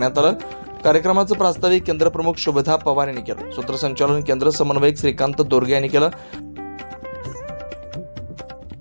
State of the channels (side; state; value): both; inverted; correlation -1.00